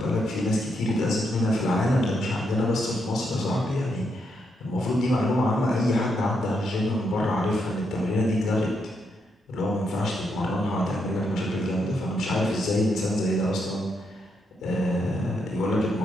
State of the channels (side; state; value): both; normal; correlation 0.80